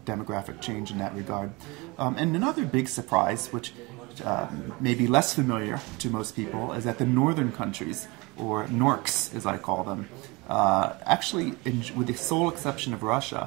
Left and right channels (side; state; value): left; quieter; 25.1 dB